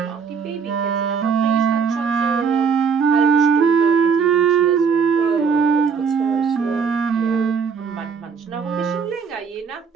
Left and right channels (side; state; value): left; quieter; 6.0 dB